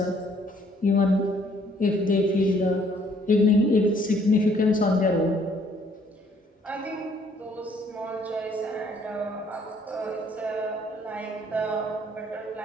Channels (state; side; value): normal; both; correlation 0.63